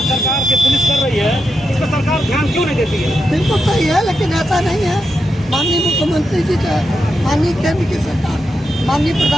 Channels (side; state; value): both; normal; correlation 0.86